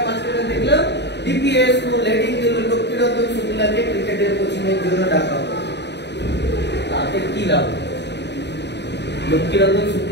মাঝখানে দেখলাম ডিপিএস স্কুল হেডিং দিল লোকটিরতন শুক্লাকে ক্রিকেটের কোচিং এর জন্য ডাকা হবে। তাতে কি লাভ? লক্ষ্মীরতন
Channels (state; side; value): late; right; 0.50 ms